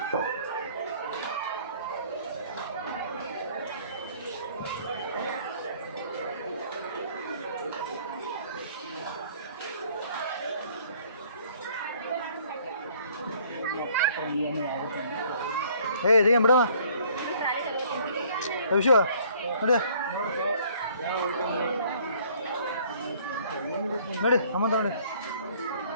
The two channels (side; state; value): both; inverted; correlation -0.57